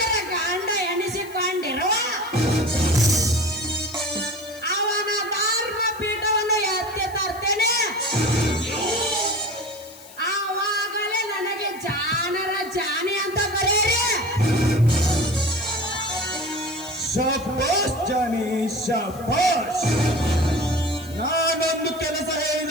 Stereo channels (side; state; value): left; noise; hiss, 20 dB below the sound